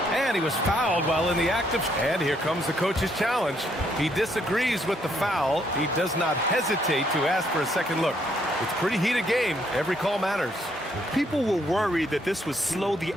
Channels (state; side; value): normal; both; correlation 0.71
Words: And he was fouled while in the act of... And here comes the coach's challenge. He disagrees with the foul. He does not hesitate to ask for a second look. It's a pretty heated game. Every call matters. People were worried that this would slow the